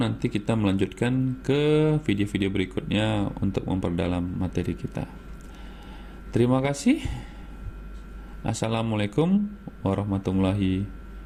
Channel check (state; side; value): identical; both; correlation 1.00